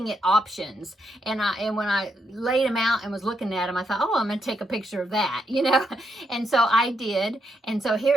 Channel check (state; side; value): normal; both; correlation 0.79